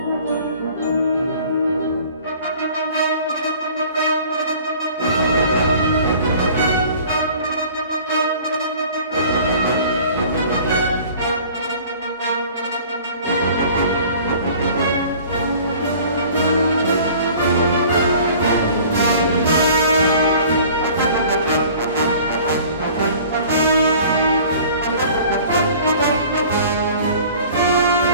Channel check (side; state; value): both; inverted; correlation -0.48